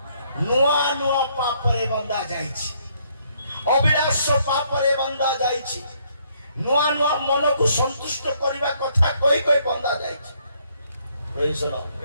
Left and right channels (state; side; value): inverted; both; correlation -0.69